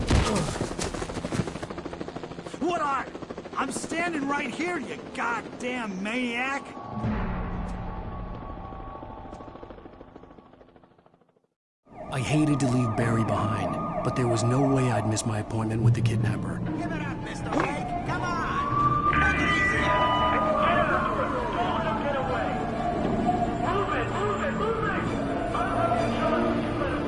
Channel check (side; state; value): both; identical; correlation 1.00